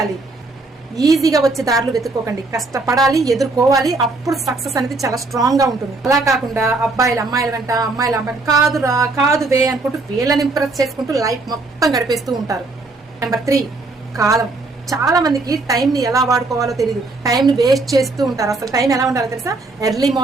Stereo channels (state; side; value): quieter; left; 3.4 dB